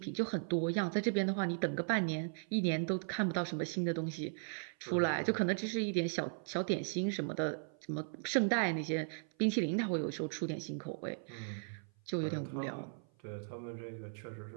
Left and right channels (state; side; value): silent; left; 53 dB below the other